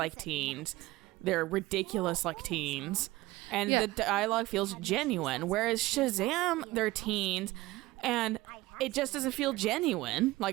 teens, they're ridiculous like teens, and Yeah. the dialogue feels genuine. Whereas Shazam, they're teens, and it just doesn't feel genuine.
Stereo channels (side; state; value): left; quieter; 18.9 dB